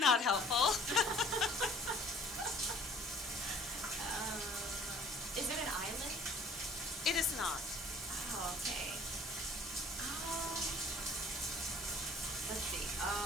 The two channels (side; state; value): both; normal; correlation 0.53